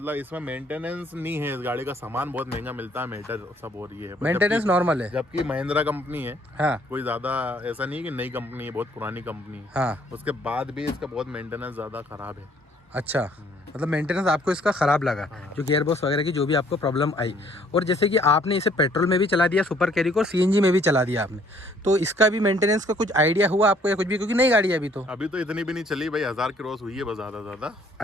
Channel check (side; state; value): both; normal; correlation 0.62